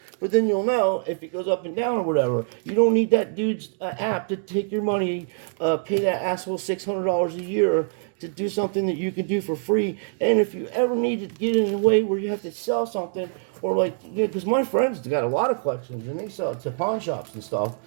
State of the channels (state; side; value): silent; left; digital silence